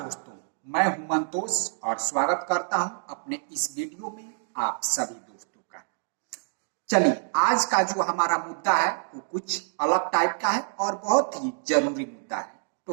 मैं हूं मंतोष और स्वागत करता हूं अपने इस वीडियो में आप सभी दोस्तों का। चलिए, आज का जो हमारा मुद्दा है वो कुछ अलग टाइप का है और बहुत ही जरूरी मुद्दा है।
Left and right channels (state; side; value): silent; left; digital silence